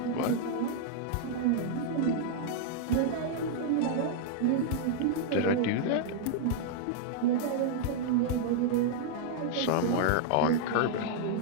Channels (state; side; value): different; both; correlation -0.01